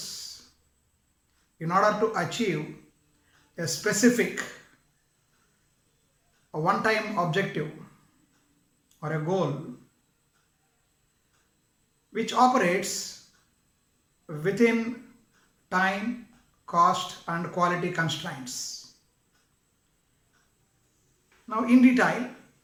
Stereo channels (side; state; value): both; identical; correlation 1.00